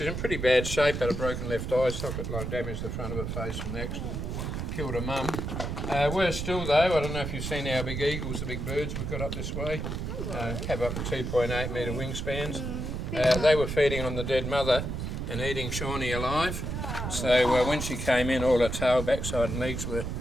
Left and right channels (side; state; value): right; noise; rumble, 4 dB below the sound